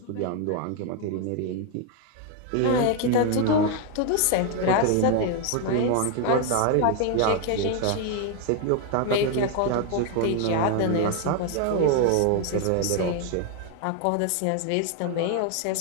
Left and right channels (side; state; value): both; different; correlation 0.01